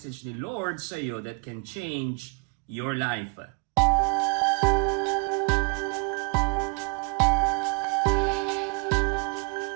ni Lord sa iyo that can change your life.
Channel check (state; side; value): quieter; left; 36.0 dB